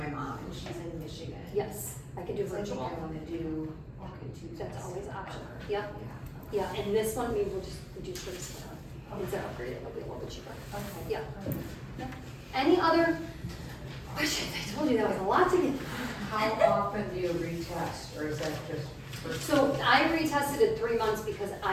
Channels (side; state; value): both; identical; correlation 1.00